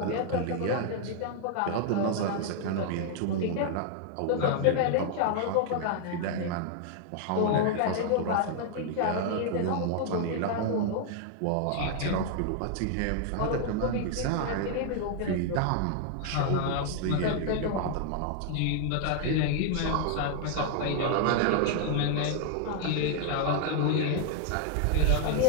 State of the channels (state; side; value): different; both; correlation 0.00